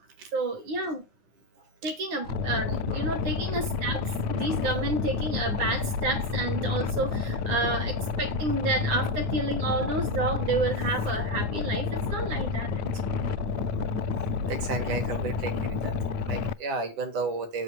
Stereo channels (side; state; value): left; late; 9.8 ms